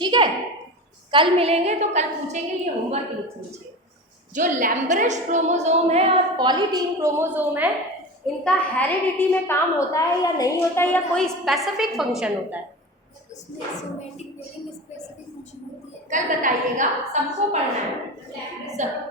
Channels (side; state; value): both; normal; correlation 0.29